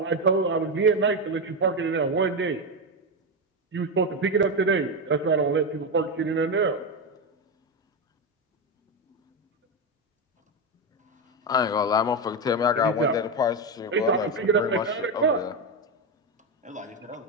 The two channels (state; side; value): normal; both; correlation 0.11